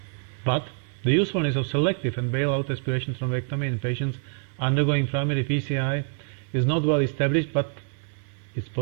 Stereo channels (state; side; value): silent; left; digital silence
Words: But the usefulness of selective and bailout aspiration thrombectomy in patients undergoing primary PCI is not well established, but it's